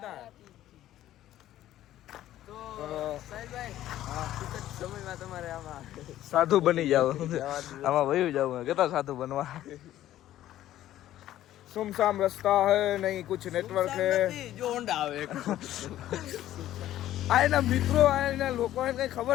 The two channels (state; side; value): quieter; right; 13.3 dB